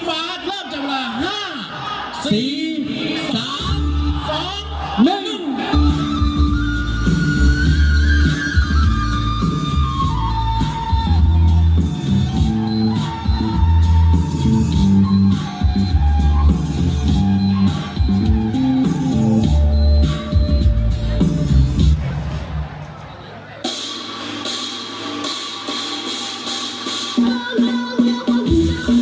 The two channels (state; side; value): identical; both; correlation 1.00